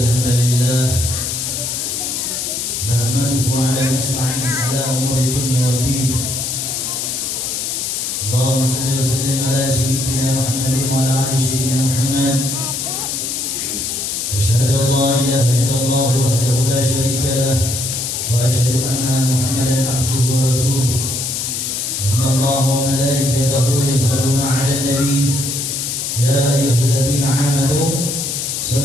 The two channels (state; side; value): noise; left; hiss, 2 dB below the sound